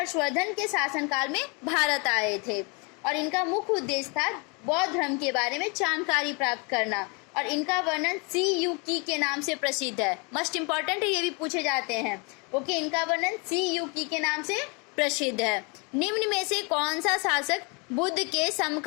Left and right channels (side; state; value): right; quieter; 31.3 dB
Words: के शासनकाल में भारत आए थे और इनका मुख्य उद्देश्य था बौद्ध धर्म के बारे में जानकारी प्राप्त करना और इनका वर्णन सी यू की के नाम से प्रसिद्ध है। मस्ट इम्पॉर्टेंट है, ये भी पूछे जाते हैं। ओके, इनका वर्णन सी यू की के नाम से प्रसिद्ध है। निम्न में से कौन सा शासक बुद्ध के